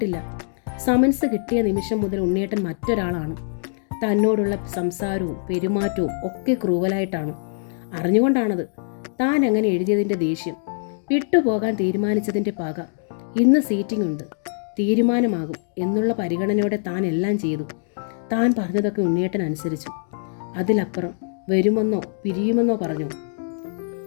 സമൻസ് കിട്ടിയ നിമിഷം മുതൽ ഉണ്ണിയേട്ടൻ മറ്റൊരാളാണ്. തന്നോടുള്ള സംസാരവും പെരുമാറ്റവും ഒക്കെ ക്രൂവലായിട്ടാണ്. അറിഞ്ഞുകൊണ്ടാണത്. താൻ അങ്ങനെ എഴുതിയതിൻ്റെ ദേഷ്യം, വിട്ടുപോകാൻ തീരുമാനിച്ചതിൻ്റെ പക. ഇന്ന് സീറ്റിംഗ് ഉണ്ട്, തീരുമാനമാകും എന്നുള്ള പരിഗണനയോടെ താൻ എല്ലാം ചെയ്തു. താൻ പറഞ്ഞതൊക്കെ ഉണ്ണിയേട്ടൻ അനുസരിച്ചു. അതിലപ്പുറം വരുമെന്നോ പിരിയുമെന്നോ പറഞ്ഞോ?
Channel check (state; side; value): silent; right; digital silence